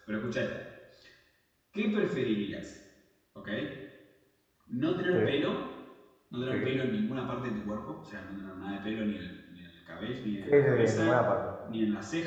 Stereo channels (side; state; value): both; identical; correlation 1.00